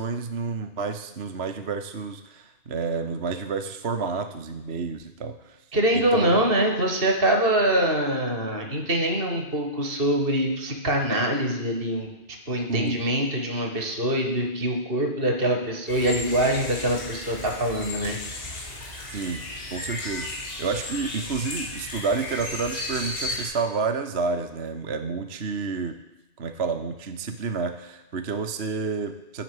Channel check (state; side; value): late; left; 2.7 ms